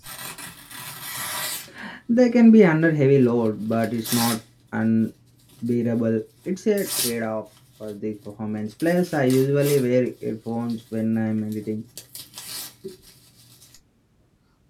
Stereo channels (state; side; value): identical; both; correlation 1.00